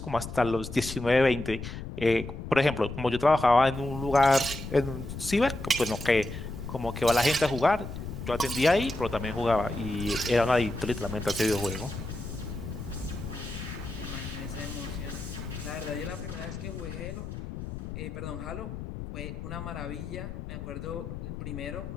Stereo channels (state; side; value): noise; left; rumble, 8 dB below the sound